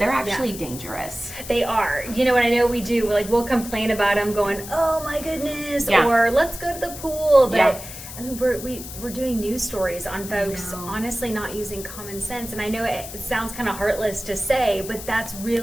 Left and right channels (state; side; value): noise; left; hiss, 12 dB below the sound